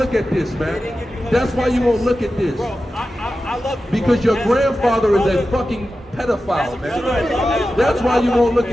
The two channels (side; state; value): both; normal; correlation 0.93